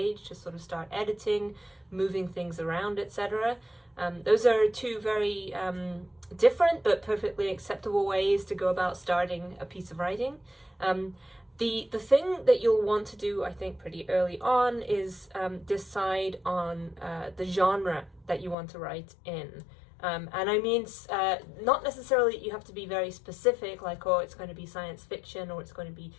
just sort of start editing, moving things around, etc. Those are two very different but perfectly acceptable ways to go about starting a piece of writing. The thing that you'll want to do, I think, pretty early on is decide on the genre that you want to write in. And I mean, not necessarily you have to be very specific, like, oh, it's going to be science fiction or it's going to be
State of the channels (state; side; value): drops out; right; at 18.6 s